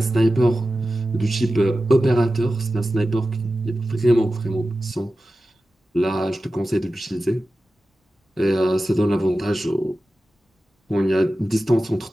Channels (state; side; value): normal; both; correlation 0.94